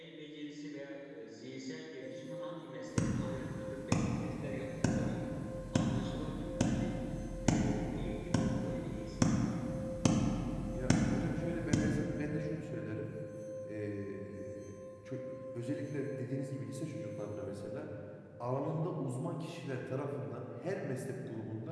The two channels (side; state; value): both; identical; correlation 1.00